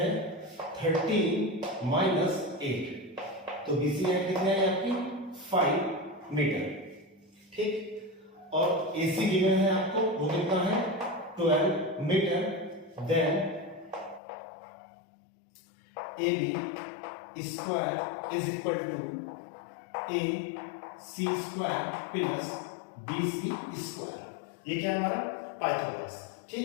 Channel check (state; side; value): drops out; right; at 14.2 s